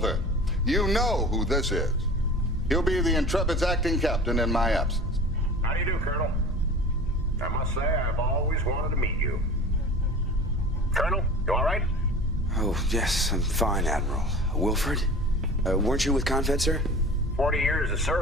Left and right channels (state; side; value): normal; both; correlation 0.39